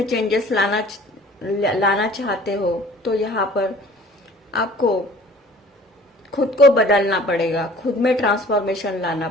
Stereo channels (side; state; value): both; normal; correlation 0.49